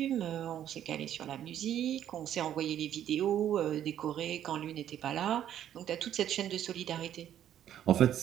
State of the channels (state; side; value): quieter; left; 10.7 dB